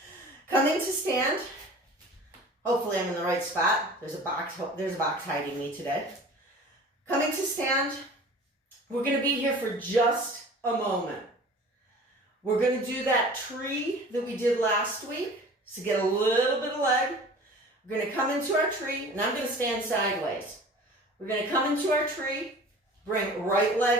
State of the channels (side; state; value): both; normal; correlation 0.43